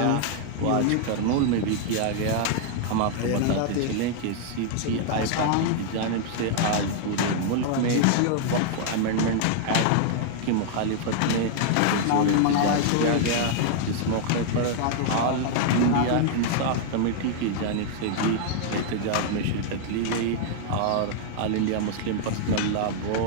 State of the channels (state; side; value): different; both; correlation 0.00